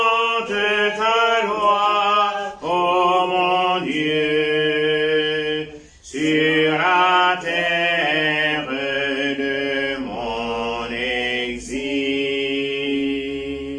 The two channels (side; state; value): both; identical; correlation 1.00